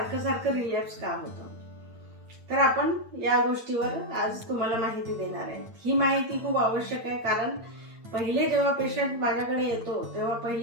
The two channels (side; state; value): left; late; 8.9 ms